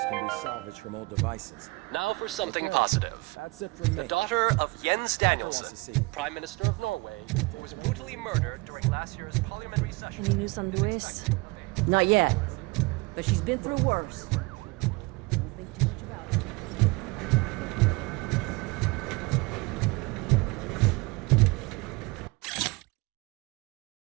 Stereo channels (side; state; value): left; quieter; 25.3 dB